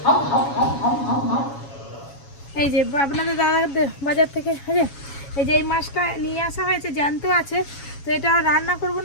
এই যে আপনাদের দাদা বাজার থেকে এই যে এই মাছটা নিয়ে আসা হয়েছে, জ্যান্ত আছে। তো এটা রান্না করবো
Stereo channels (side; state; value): right; late; 7.2 ms